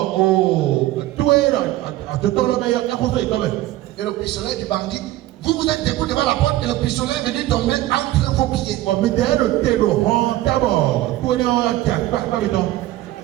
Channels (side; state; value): left; quieter; 15.7 dB